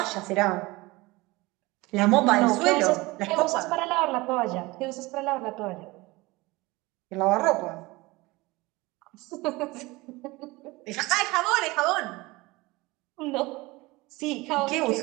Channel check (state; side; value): quieter; left; 22.0 dB